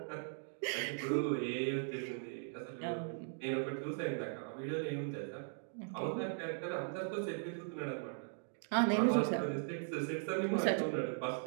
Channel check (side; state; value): left; silent; digital silence